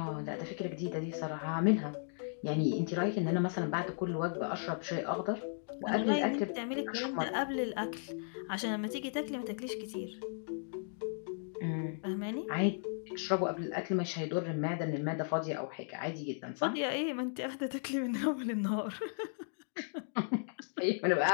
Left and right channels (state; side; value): silent; right; digital silence